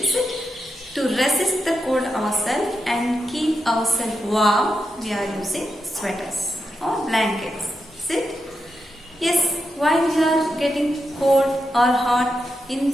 it? To resist the cold ourselves and keep ourselves warm, we are using sweaters or blankets. Is it? Yes, why we are getting cold or hot? In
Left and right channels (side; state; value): both; normal; correlation 0.86